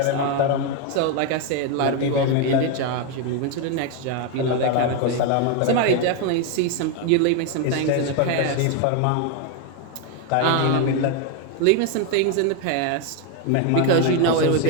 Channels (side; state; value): both; different; correlation 0.01